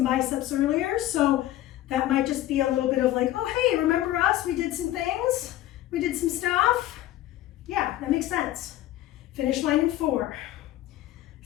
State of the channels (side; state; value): right; quieter; 14.3 dB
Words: biceps earlier, so that might just be a little bit of like, oh, hey, remember us? We did some things. We did some stuff. Yeah, that makes sense. Finish line in 4,